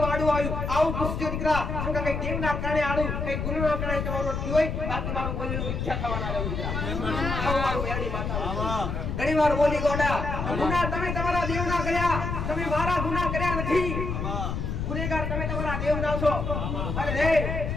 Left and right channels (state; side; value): noise; left; rumble, 3 dB below the sound